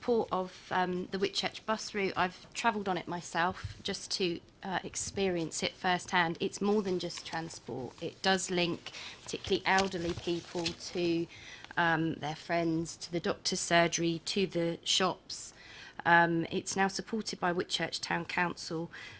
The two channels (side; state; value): both; identical; correlation 1.00